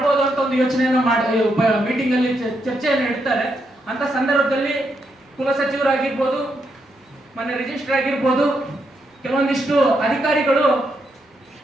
ಅಂತ ಒಂದು ಯೋಚನೆಯನ್ನು ಮೀಟಿಂಗ್ ಅಲ್ಲಿ ಚರ್ಚೆಯನ್ನು ಇಡ್ತಾರೆ. ಅಂತ ಸಂದರ್ಭದಲ್ಲಿ ಕುಲಸಚಿವರಾಗಿರ್ಬೋದು, ಮೊನ್ನೆ ರಿಜಿಸ್ಟರ್ ಆಗಿರ್ಬೋದು, ಕೆಲವೊಂದಿಷ್ಟು ಅಧಿಕಾರಿಗಳು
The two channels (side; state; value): both; normal; correlation 0.80